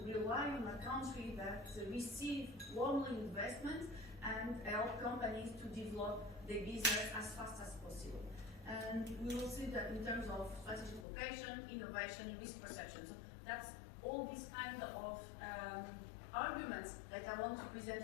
on a country that receive warmly investment and help companies to develop their business as fast as possible. And we will see that in terms of strategic location, innovation, risk perception. So that's all these kind of arguments that I want to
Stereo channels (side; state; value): right; drops out; at 11.1 s